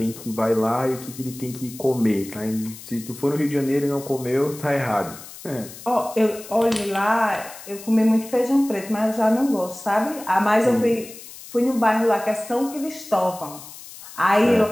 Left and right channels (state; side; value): noise; left; hiss, 16 dB below the sound